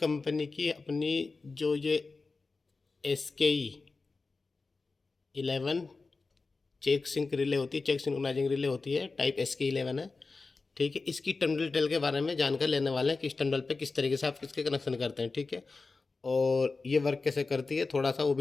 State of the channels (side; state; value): right; quieter; 3.9 dB